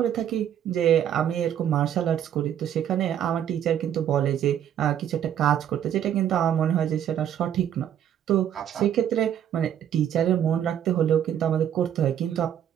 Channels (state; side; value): quieter; left; 9.9 dB